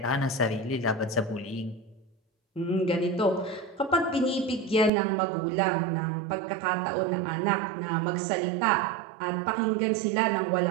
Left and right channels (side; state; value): left; drops out; at 4.9 s